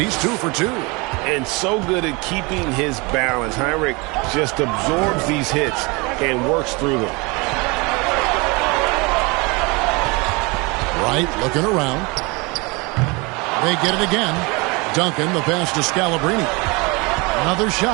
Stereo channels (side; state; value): left; quieter; 27.1 dB